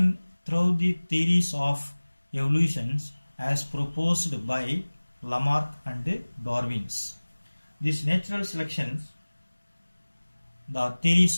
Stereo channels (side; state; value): both; inverted; correlation -1.00